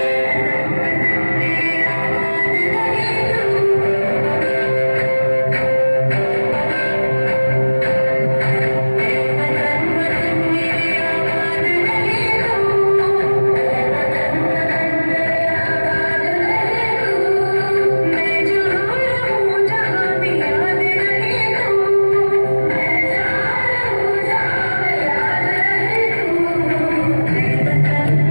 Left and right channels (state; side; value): inverted; both; correlation -1.00